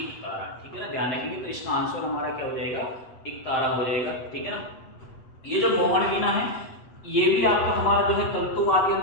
तारा, ठीक है ना, ध्यान रखेंगे। तो इसका आंसर हमारा क्या हो जाएगा, एक तारा हो जाएगा, ठीक है ना। ये जो मोहन वीणा है, ये भी आपका हमारा जो है तंतु वाद्य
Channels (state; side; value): late; right; 8.1 ms